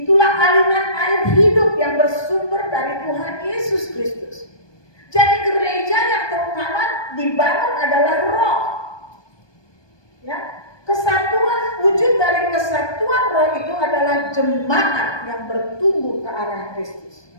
aliran air hidup yang bersumber dari Tuhan Yesus Kristus. Jadi gereja yang terutama dibangun adalah roh. Ya, kesatuan, wujud dari kesatuan roh itu adalah jemaat yang bertumbuh ke arah Kristus.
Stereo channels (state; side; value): late; right; 1.2 ms